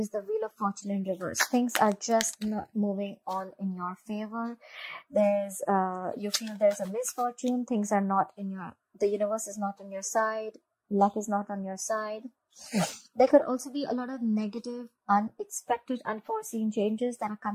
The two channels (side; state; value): both; identical; correlation 1.00